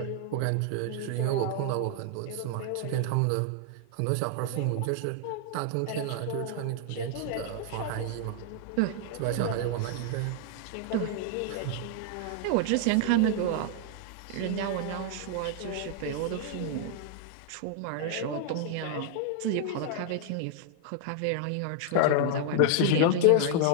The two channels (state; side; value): different; both; correlation 0.00